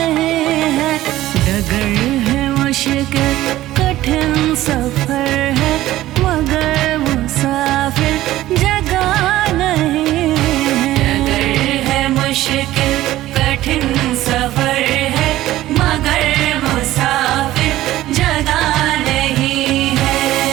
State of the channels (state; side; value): quieter; left; 15.2 dB